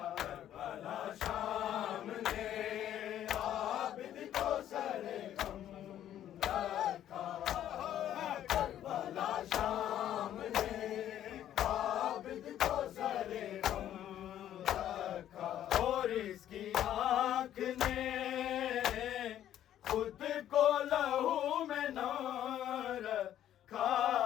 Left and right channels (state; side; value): quieter; right; 11.4 dB